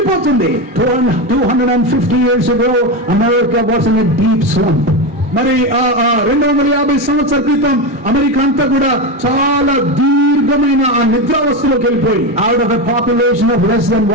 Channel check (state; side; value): normal; both; correlation 0.15